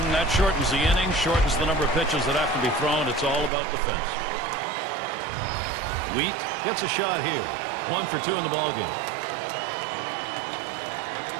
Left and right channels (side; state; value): left; drops out; at 3.5 s